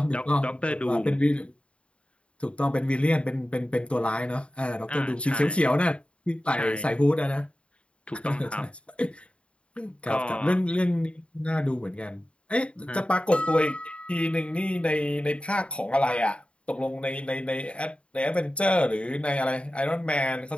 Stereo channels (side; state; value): right; late; 0.059 ms